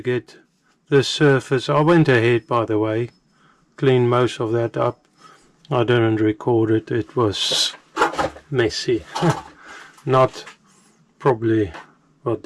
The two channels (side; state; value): both; identical; correlation 1.00